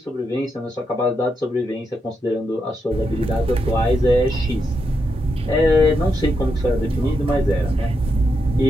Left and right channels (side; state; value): both; normal; correlation 0.84